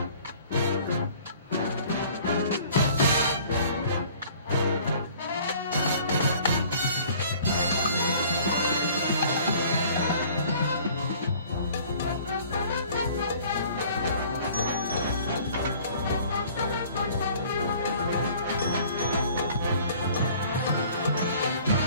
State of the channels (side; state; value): both; inverted; correlation -0.52